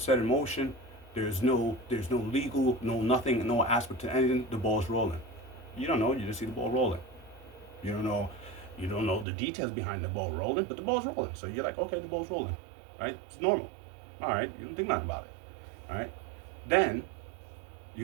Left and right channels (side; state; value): left; drops out; at 9.2 s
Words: set in motion, there's no legal, no nothing, no aspect to anything, the ball's rolling. You don't know, you just see the ball rolling. You don't know the details behind the ball rolling, but the ball's rolling. So you're like, okay, the ball's rolling, right? It's normal. All right, you don't think nothing about it, all right? Then